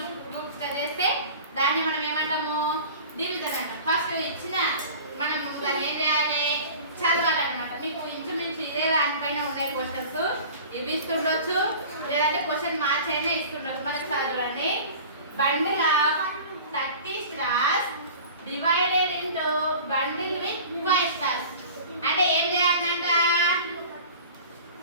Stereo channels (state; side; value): inverted; both; correlation -0.40